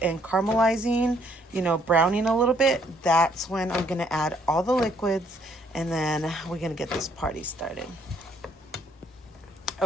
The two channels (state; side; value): normal; both; correlation 0.67